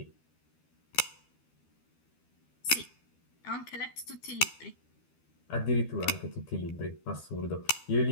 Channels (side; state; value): right; late; 12 ms